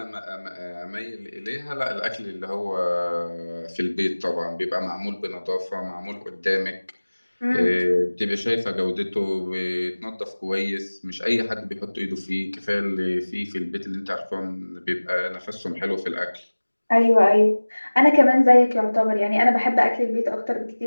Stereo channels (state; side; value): inverted; both; correlation -1.00